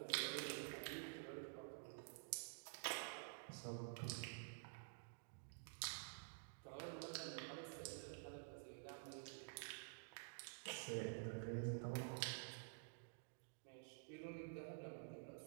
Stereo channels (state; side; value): silent; left; digital silence